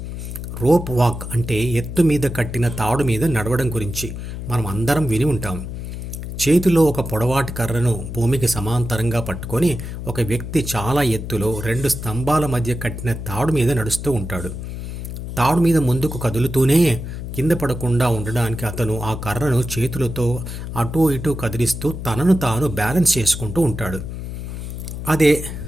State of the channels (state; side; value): noise; left; hum, 7 dB below the sound